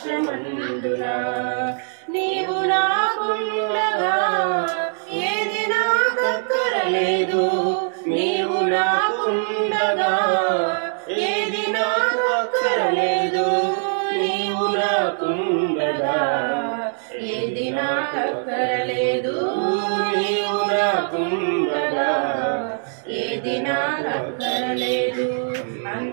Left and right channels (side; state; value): left; silent; digital silence